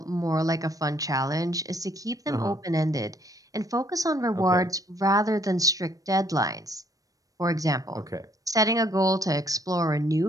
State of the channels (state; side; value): late; left; 0.17 ms